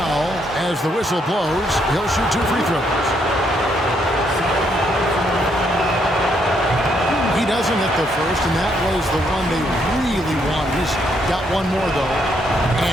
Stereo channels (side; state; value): both; normal; correlation 0.73